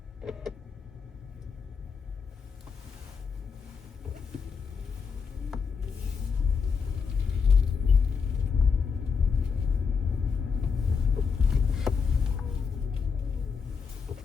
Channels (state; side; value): quieter; right; 5.8 dB